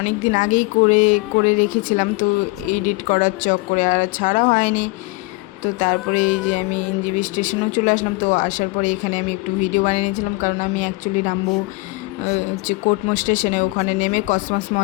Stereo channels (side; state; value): right; quieter; 23.8 dB